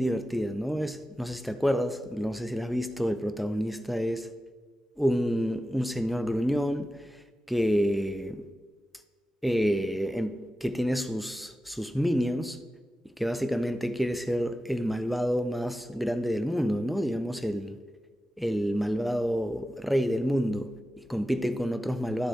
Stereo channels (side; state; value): both; normal; correlation 0.93